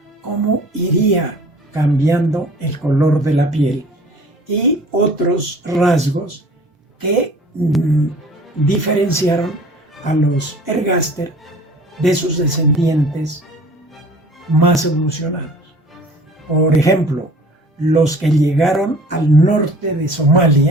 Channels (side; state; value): both; normal; correlation 0.47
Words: cómo iría cambiando el color de la piel y otros rasgos que diferenciaron a los ergaster de sus descendientes más evolucionados. Por ejemplo, los que llegaron al norte de